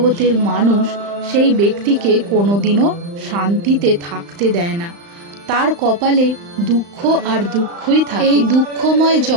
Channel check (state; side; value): late; left; 35 ms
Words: মানুষ সেই ব্যক্তিকে কোনোদিনও শান্তিতে থাকতে দেয় না। তার কপালে দুঃখ আর দুঃখই থাকে। এই দুঃখময়